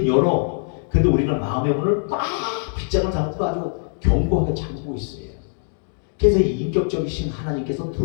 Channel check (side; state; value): right; silent; digital silence